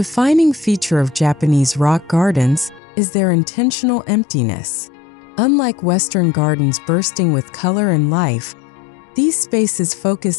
feature of Japanese rock gardens is their intentional emptiness. Unlike Western gardens bursting with color and life, These spaces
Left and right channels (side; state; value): right; drops out; at 2.8 s